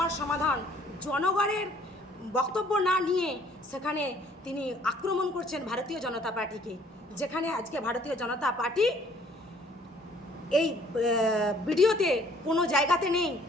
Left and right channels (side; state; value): both; normal; correlation 0.59